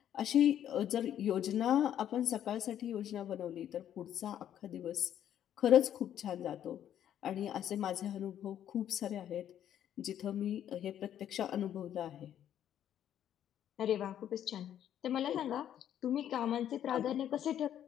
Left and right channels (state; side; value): quieter; right; 10.5 dB